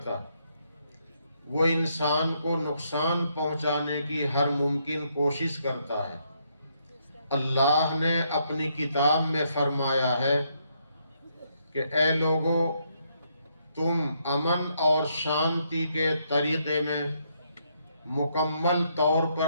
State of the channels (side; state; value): both; inverted; correlation -0.75